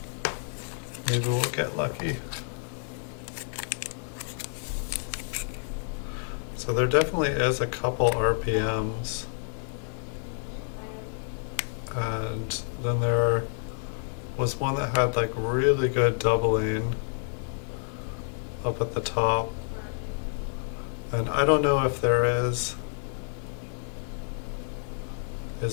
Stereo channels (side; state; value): right; silent; digital silence